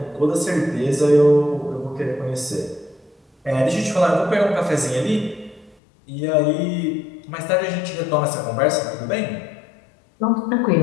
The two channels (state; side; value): drops out; right; at 5.8 s